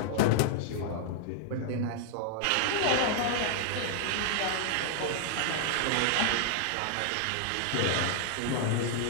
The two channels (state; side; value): different; both; correlation 0.00